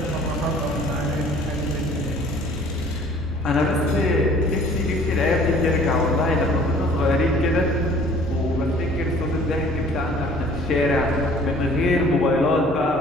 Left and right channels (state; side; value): normal; both; correlation 0.52